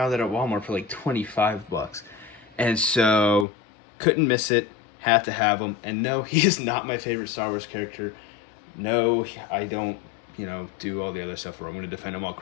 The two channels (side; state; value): right; drops out; at 3.5 s